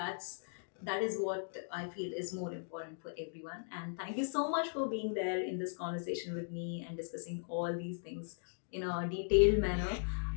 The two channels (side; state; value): right; silent; digital silence